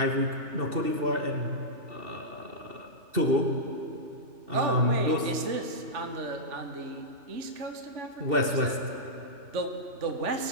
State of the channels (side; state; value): left; late; 2.7 ms